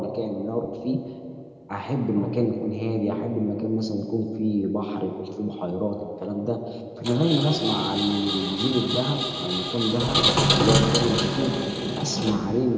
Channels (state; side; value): identical; both; correlation 1.00